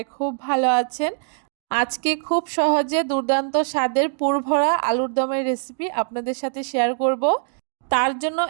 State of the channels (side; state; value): left; silent; digital silence